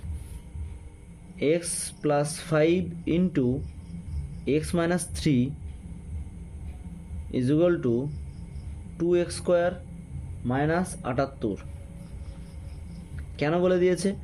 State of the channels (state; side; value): identical; both; correlation 1.00